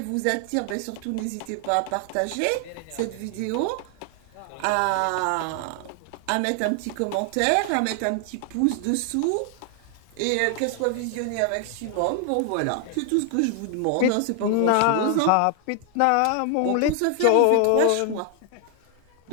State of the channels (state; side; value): different; both; correlation 0.00